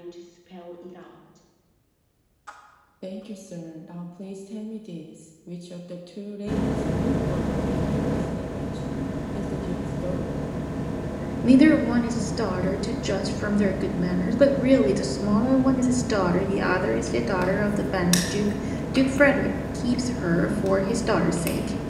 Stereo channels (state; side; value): identical; both; correlation 1.00